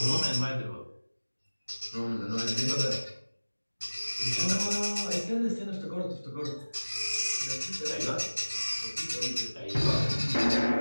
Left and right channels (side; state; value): both; inverted; correlation -1.00